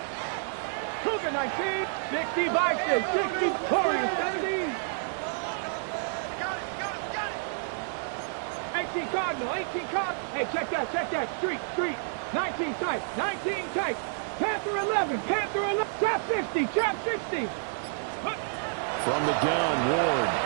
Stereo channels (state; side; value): silent; left; digital silence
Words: Cougar 19, 60 Bison, 60 Warriors 17. 18 Cardinal, 18 Cardinal. Hey, check that. Street. 19 tight, Panther 11, Trap 60. From the gun, Ward.